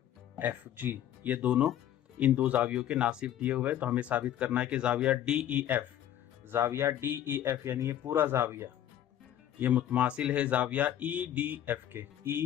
FG, ये दोनों इन दो जावियों के नासिफ दिए हुए हैं। तो हमें साबित करना है कि जाविया DEF यानी ये पूरा जाविया ये मुतमासिल है जाविया EDF के,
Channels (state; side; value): quieter; right; 11.3 dB